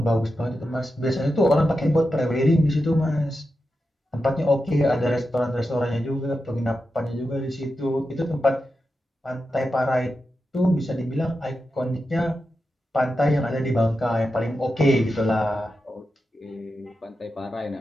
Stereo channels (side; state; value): both; normal; correlation 0.89